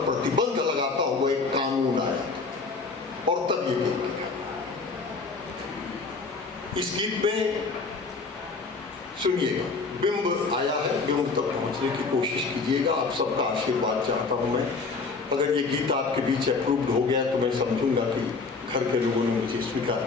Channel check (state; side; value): quieter; right; 4.3 dB